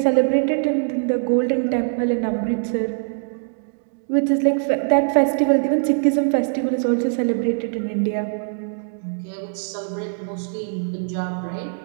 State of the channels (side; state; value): left; silent; digital silence